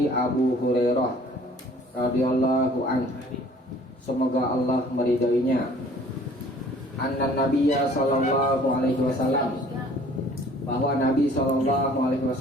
Abu Hurairah radhiyallahu an, semoga Allah meridainya, anna Nabiyya sallallahu alaihi wasallam, bahwa Nabi sallallahu alaihi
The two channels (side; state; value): both; normal; correlation 0.54